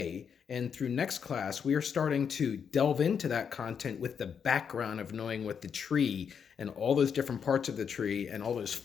and through next class, we are starting to delve into that content with the background of knowing what the tree and all those different parts of the tree and all those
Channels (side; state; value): right; quieter; 7.0 dB